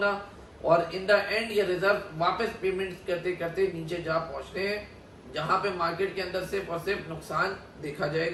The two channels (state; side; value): identical; both; correlation 1.00